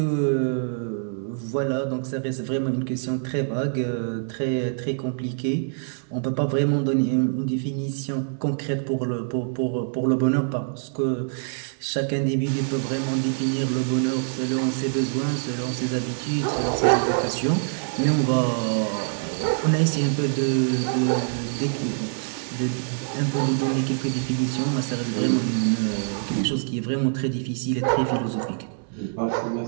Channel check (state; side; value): silent; left; 62 dB below the other